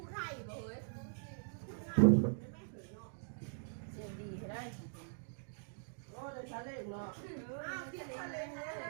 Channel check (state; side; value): silent; left; digital silence